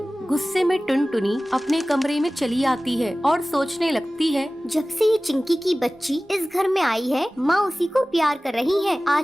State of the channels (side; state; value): both; normal; correlation 0.97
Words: गुस्से में टुनटुनी अपने कमरे में चली आती है और सोचने लगती है, जब से ये चिंकी की बच्ची इस घर में आई है, माँ उसी को प्यार कर रही है।